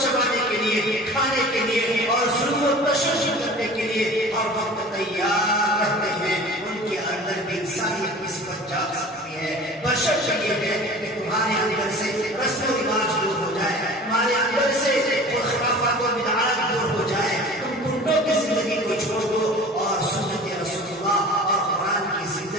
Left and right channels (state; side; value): normal; both; correlation 0.41